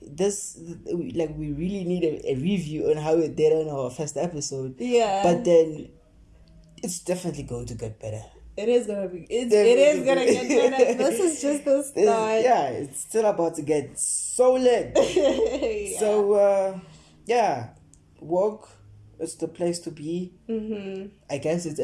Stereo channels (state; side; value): identical; both; correlation 1.00